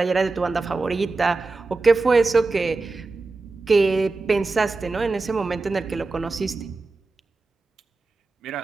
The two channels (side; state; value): left; quieter; 3.7 dB